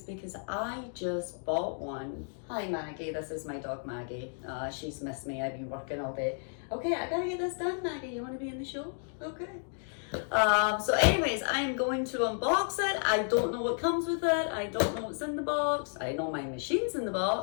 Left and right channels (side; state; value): right; silent; 56 dB below the other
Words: because I just bought one. Hi Maggie, this is my dog Maggie. She's missed me. I've been working all day. Okay, I gotta get this done, Maggie. You want to be in the show? Okay. So anyways, I am going to unbox it. I don't know what comes with it. I don't know what's in the box. I know my machine's in the